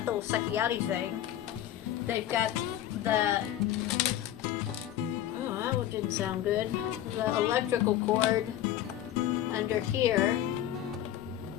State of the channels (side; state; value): right; quieter; 12.1 dB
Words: the little sucky outy thing. They've got the, oh, that one didn't sound good. The electrical cord under here.